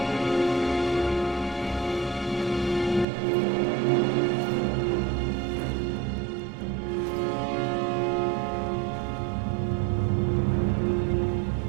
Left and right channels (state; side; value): drops out; left; at 3.1 s